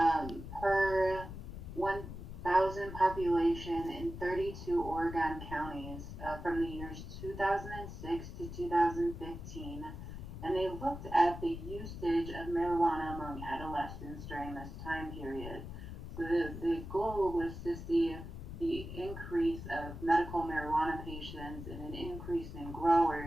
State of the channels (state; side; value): noise; left; rumble, 9 dB below the sound